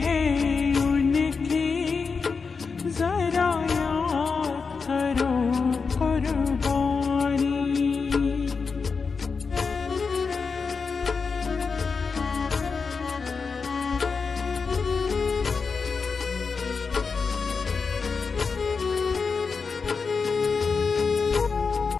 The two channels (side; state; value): right; quieter; 5.0 dB